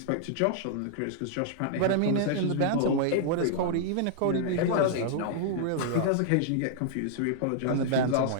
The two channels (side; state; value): both; different; correlation -0.01